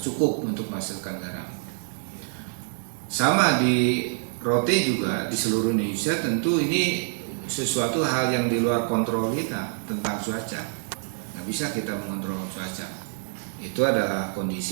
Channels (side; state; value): left; silent; digital silence